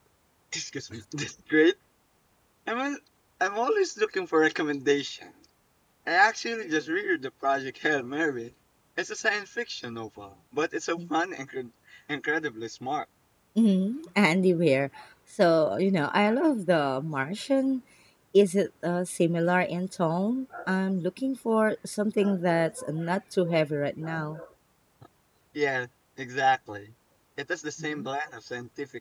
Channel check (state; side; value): identical; both; correlation 1.00